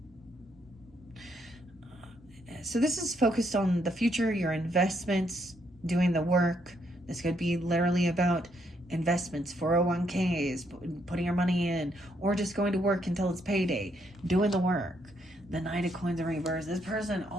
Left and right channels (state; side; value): normal; both; correlation 0.74